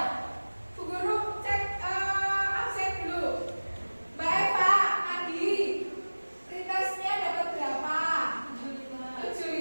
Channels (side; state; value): both; inverted; correlation -1.00